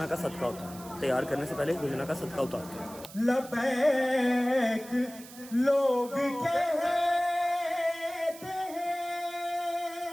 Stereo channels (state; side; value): noise; right; hiss, 17 dB below the sound